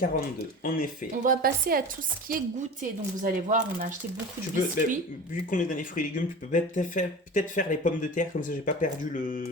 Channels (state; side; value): normal; both; correlation 0.34